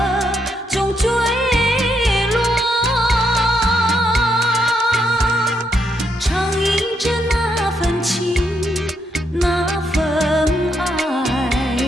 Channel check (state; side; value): normal; both; correlation 0.77